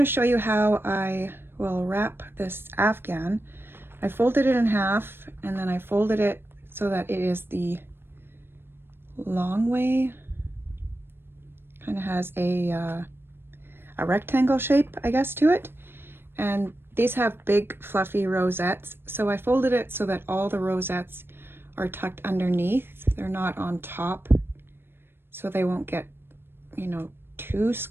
show you how I will wrap this Afghan. I folded it in half and then I folded it so that it is the long way. Kind of has a rectangle shape, I guess, to it. And these have big fluffy rosettes. So I folded it so that all the rosettes are tucked underneath. They're not on top, so they won't get, you know, too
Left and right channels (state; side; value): late; left; 0.11 ms